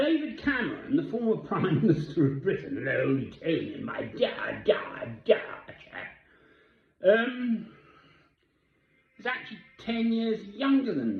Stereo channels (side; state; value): both; identical; correlation 1.00